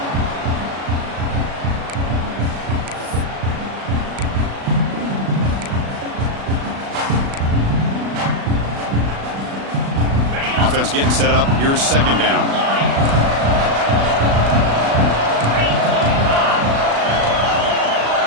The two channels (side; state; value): left; late; 36 ms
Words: Offense getting set up. Here's 2nd down.